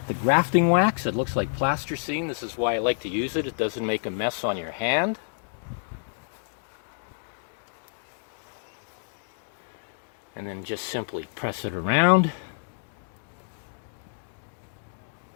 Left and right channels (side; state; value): right; silent; digital silence